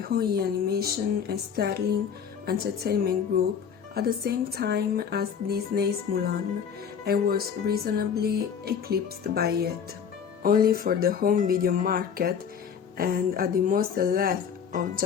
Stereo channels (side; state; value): right; quieter; 7.4 dB